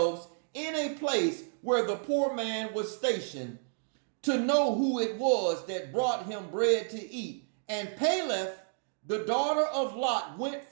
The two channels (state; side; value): silent; left; digital silence